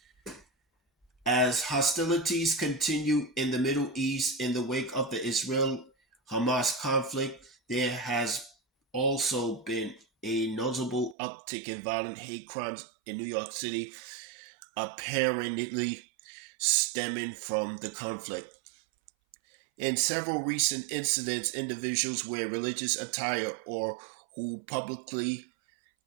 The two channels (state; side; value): drops out; left; at 11.2 s